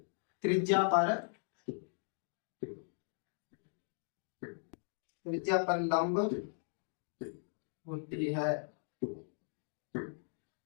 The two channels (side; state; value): right; silent; digital silence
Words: त्रिज्या पर लंब होती है।